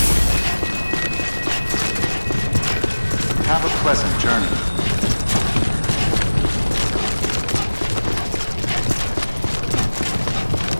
Have a pleasant journey.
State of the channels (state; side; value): inverted; both; correlation -1.00